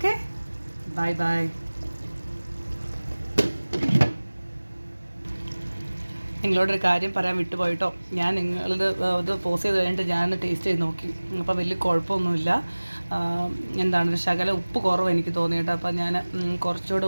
bye bye. നിങ്ങളോടൊരു കാര്യം പറയാൻ വിട്ടുപോയിട്ടോ. ഞാൻ ഇത് പോസ് ചെയ്ത് കഴിഞ്ഞിട്ട് ഞാൻ ടേസ്റ്റ് ചെയ്ത് നോക്കി. അപ്പോൾ വലിയ കുഴപ്പമൊന്നുമില്ല. എന്താണ്, ഒരു ശകല ഉപ്പ് കുറവ് എനിക്ക് തോന്നിയിട്ട്. അപ്പോൾ ഞാൻ കുറച്ചുകൂടെ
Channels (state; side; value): inverted; both; correlation -1.00